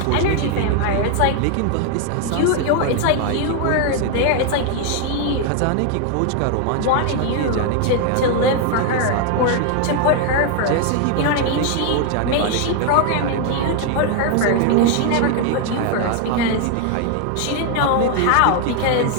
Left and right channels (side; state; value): both; different; correlation 0.01